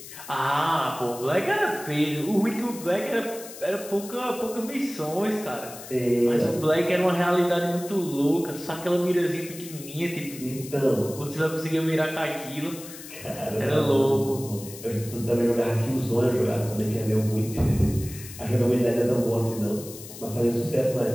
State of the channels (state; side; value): noise; left; hiss, 14 dB below the sound